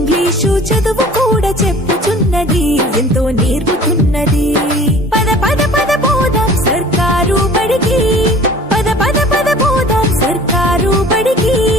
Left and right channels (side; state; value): both; normal; correlation 0.47